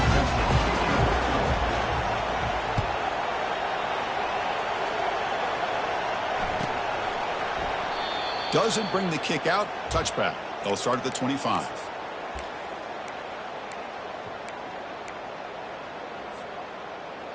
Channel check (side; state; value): both; identical; correlation 1.00